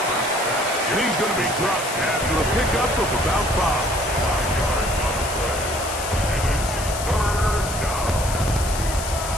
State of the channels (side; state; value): left; noise; hiss, 8 dB below the sound